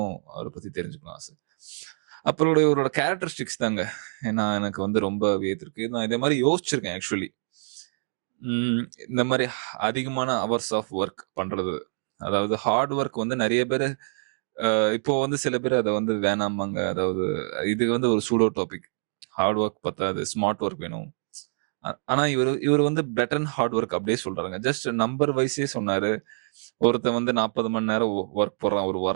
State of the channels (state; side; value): silent; left; digital silence